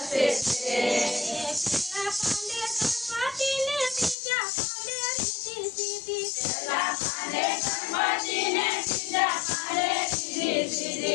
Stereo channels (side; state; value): right; drops out; at 4.2 s